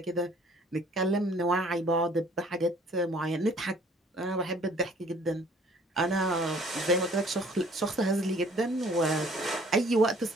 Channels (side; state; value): both; normal; correlation 0.56